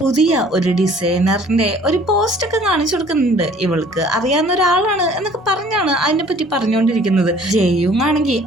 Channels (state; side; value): normal; both; correlation 0.53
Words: പുതിയ ഒരു ഡിസൈനറിന്റെ ഒരു പോസ്റ്റ് ഒക്കെ കാണിച്ചു കൊടുക്കുന്നുണ്ട്. ഇവൾക്ക് അറിയാവുന്ന ഒരാളാണ് എന്നൊക്കെ പറഞ്ഞാണ് അതിനെ പറ്റി പറഞ്ഞുകൊണ്ടിരിക്കുന്നത്. ജെയുങ് ആണെങ്കിൽ